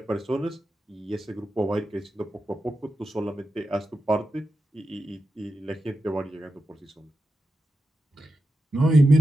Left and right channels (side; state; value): both; normal; correlation 0.90